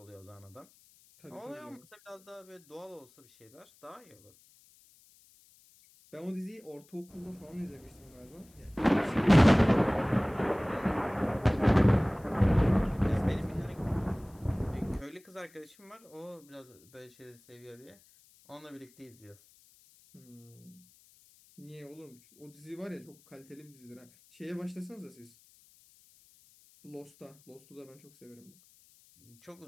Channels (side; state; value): left; noise; hiss, 28 dB below the sound